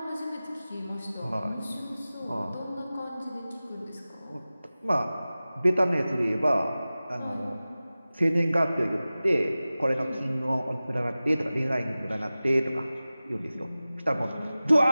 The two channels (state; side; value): inverted; both; correlation -0.97